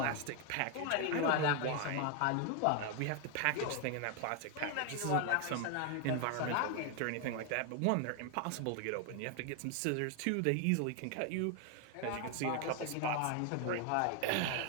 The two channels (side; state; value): both; different; correlation 0.01